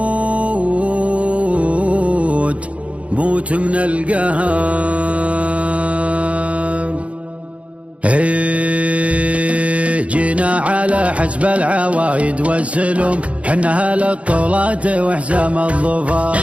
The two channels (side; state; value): left; late; 0.063 ms